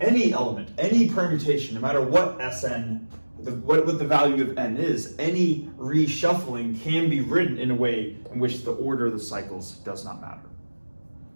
element, any permutation, no matter what Sn, what the value of n is, any reshuffling can be written in a way in which the order of the cycles does not matter.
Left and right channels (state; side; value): inverted; both; correlation -1.00